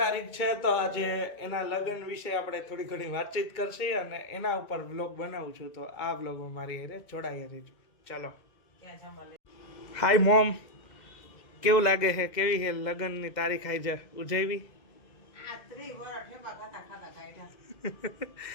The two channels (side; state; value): right; late; 2.2 ms